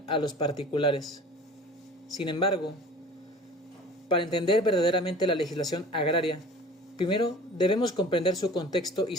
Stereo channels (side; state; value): both; normal; correlation 0.43